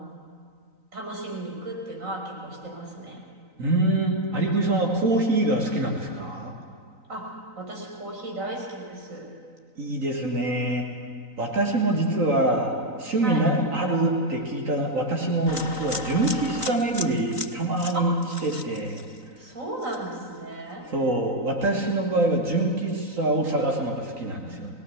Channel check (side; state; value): left; late; 3.9 ms